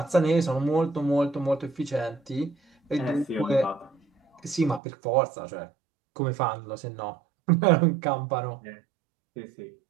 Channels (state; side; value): drops out; left; at 4.8 s